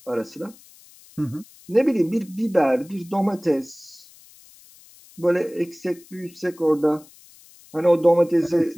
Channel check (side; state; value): left; noise; hiss, 25 dB below the sound